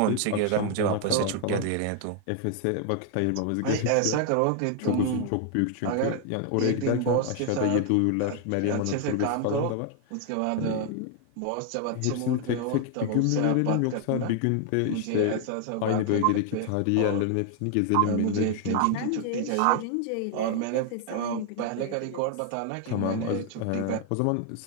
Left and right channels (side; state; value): both; different; correlation 0.00